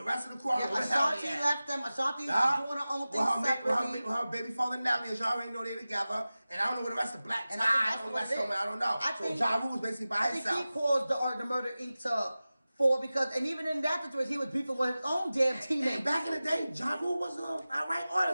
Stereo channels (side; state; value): both; inverted; correlation -0.96